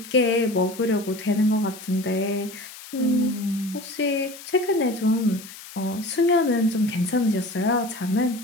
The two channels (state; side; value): noise; left; hiss, 16 dB below the sound